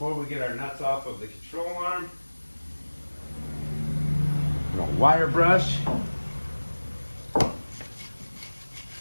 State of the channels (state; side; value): inverted; both; correlation -1.00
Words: we get our nuts off of the control arm, I'm gonna wire brush